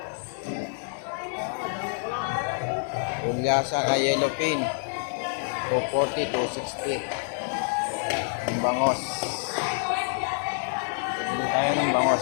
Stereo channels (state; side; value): silent; right; digital silence